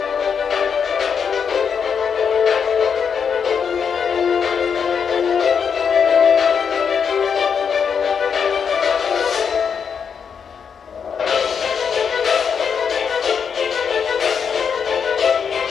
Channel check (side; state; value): right; quieter; 6.8 dB